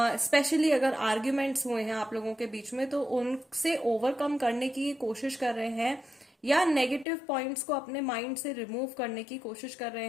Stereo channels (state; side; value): drops out; right; at 7.1 s